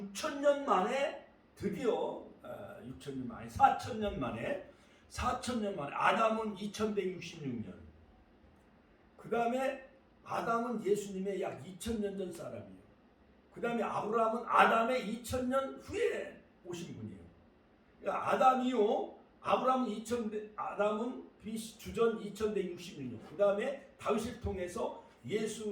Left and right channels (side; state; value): both; identical; correlation 1.00